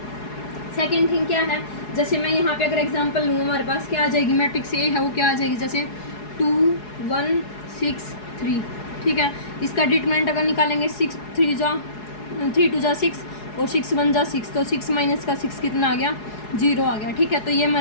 सेकेंड थिंग क्या है, जैसे मैं यहाँ पे अगर एग्जांपल लूँ, हमारे पास क्या आ जाएगी, मैट्रिक्स ए है वो क्या आ जाएगी, जैसे 2 1 6 3, ठीक है। इसका डिटरमिनेंट अगर निकालेंगे 6 3 2 जा 6 और 6 1 जा 6, तो 6 माइनस का 6 कितना आ गया, 0 आ गया, ठीक है। तो ये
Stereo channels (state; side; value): late; right; 4.8 ms